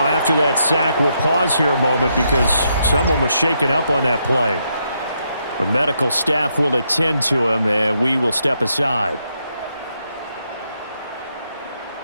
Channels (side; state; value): both; inverted; correlation -0.78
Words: after that sack, we'll pause here a moment because someone was shaken up on that play. The medical staff will attend to him, and we will step aside.